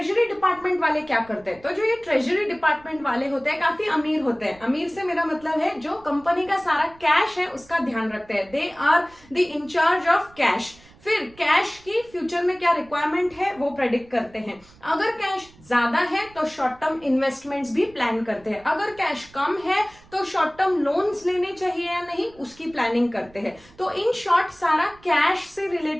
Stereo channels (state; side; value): noise; right; rumble, 26 dB below the sound